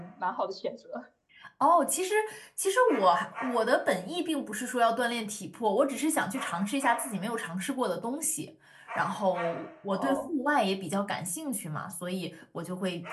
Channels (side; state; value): both; identical; correlation 1.00